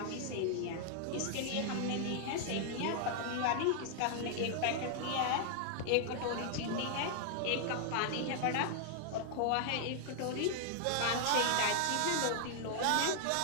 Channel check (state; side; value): different; both; correlation -0.01